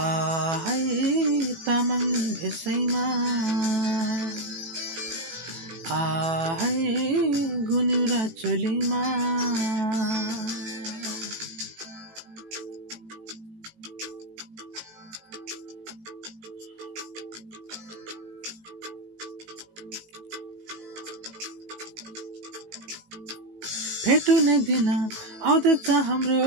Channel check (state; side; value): late; left; 18 ms